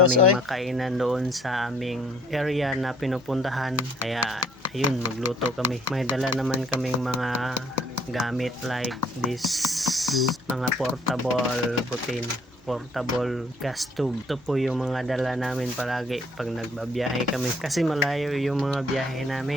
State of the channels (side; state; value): both; normal; correlation 0.61